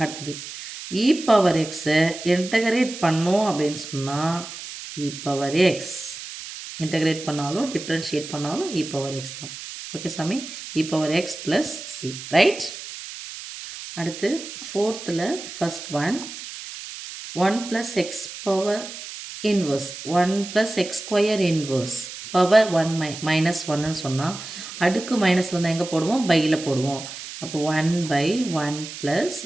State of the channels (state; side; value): noise; right; hiss, 11 dB below the sound